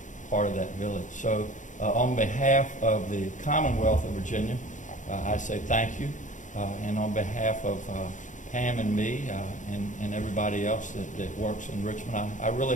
part of that village. So on behalf of the Commonwealth of Virginia, I say thank you. And on behalf of Pam and me and everybody else that works in Richmond, I really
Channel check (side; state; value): right; late; 0.36 ms